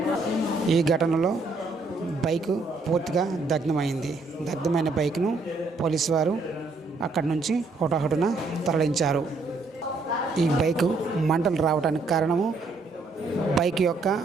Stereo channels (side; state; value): left; quieter; 3.6 dB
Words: ఈ ఘటనలో బైకు పూర్తిగా దగ్ధమైంది. దగ్ధమైన బైక్ను పోలీసు వారు అక్కడి నుంచి హుటాహుటిన తరలించారు. ఈ బైకు మంటలు రావడానికి కారణము బైక్ యొక్క